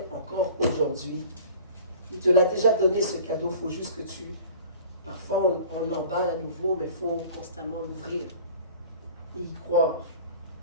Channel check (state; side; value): inverted; both; correlation -0.45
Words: encore aujourd'hui. Il te l'a déjà donné ce cadeau, il faut juste que parfois on l'emballe à nouveau, mais il faut constamment l'ouvrir et y croire.